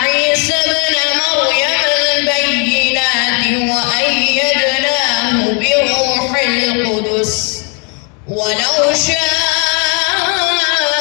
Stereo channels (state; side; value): quieter; right; 34.4 dB